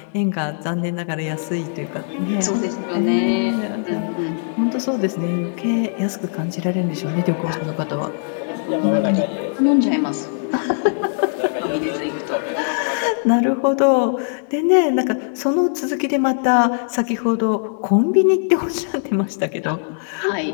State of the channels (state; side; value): silent; right; digital silence